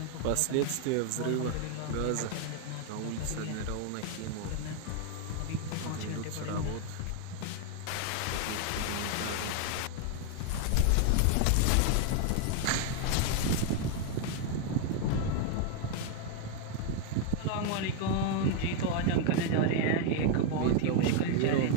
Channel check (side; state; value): both; different; correlation 0.01